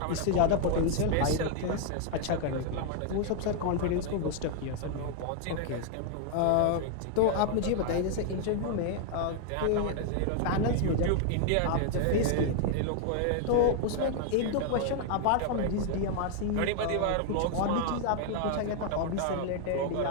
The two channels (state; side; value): different; both; correlation 0.00